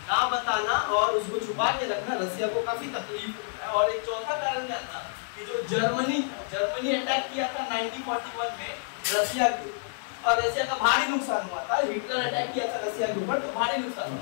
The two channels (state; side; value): silent; right; digital silence